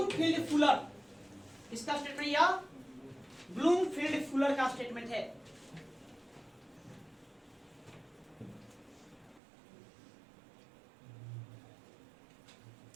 फुलर। किसका स्टेटमेंट? या ब्लूमफील्ड फुलर का स्टेटमेंट है।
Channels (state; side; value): drops out; left; at 9.4 s